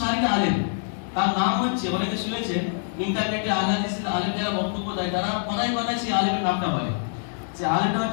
আলেম, তার নাম হচ্ছে, অনেকে শুনেছেন ইন্টারনেটে আহলে হাদিসের আলেম যারা বক্তব্য দেয়, তারা কথায় কথায় সেই আলেমের নামটা বলে। সে আলেমটা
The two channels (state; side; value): silent; right; digital silence